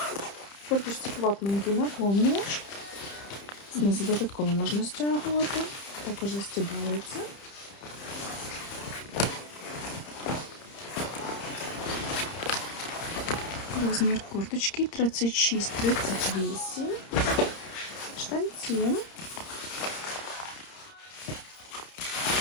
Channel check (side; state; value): right; late; 30 ms